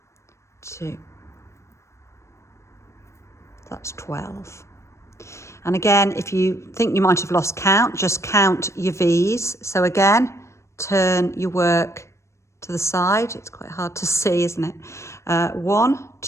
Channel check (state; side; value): late; right; 0.14 ms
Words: 2, that's 12. And again, if you think you might have lost count, just count your V's. So again, turn your work to the side. It's quite hard to see, isn't it? 1,